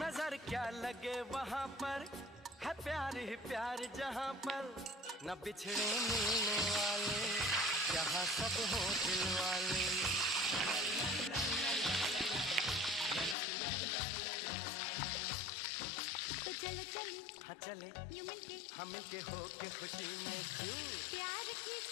नजर क्या लगे वहाँ पर, है प्यार ही प्यार जहाँ पर, न बिछड़े मिलने वाले, जहाँ सब हो दिल वाले। तो चलो चले, हाँ चले, यूं मिलके, हम मिलके हो के खुशी में क्यों, प्यार की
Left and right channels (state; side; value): drops out; right; at 13.4 s